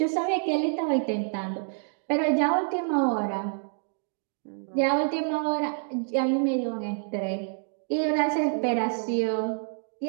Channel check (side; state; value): left; silent; 60 dB below the other